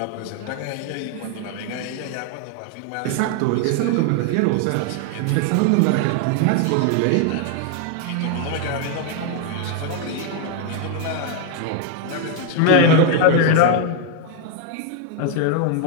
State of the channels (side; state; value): both; different; correlation 0.01